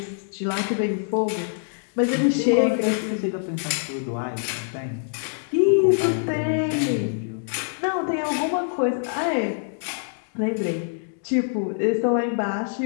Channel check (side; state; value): right; silent; digital silence